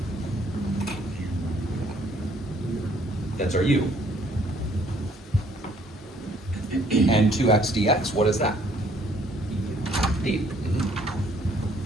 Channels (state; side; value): normal; both; correlation 0.62